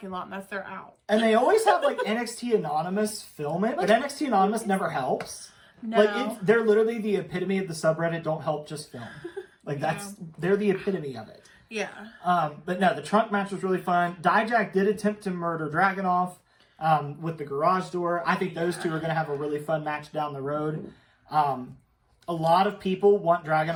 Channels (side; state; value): both; identical; correlation 1.00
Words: lot and that's their out. And they always have like NXT Anonymous film it, but NXT Anonymous never helps. No. Like they're literally the epitome of the subreddit. Don't help, just film. Like they're the epitome of it. Yeah. But no, the trunk match was really fun. Dijak did attempt to murder Dragunov with the garage door. I think those two are going to have a really fun match down the road. A lot of people want